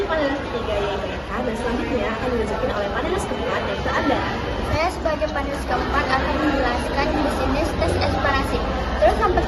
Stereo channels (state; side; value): identical; both; correlation 1.00